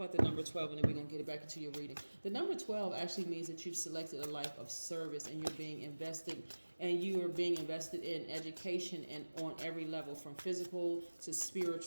the number 12 and then we're going to get it back into your reading. The number 12 actually means that you've selected a life of service and you're being invested, and you are being invested in education and on every level from physical to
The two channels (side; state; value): both; inverted; correlation -1.00